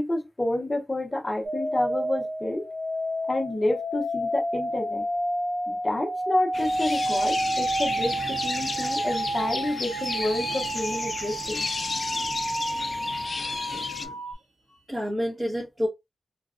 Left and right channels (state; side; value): normal; both; correlation 0.93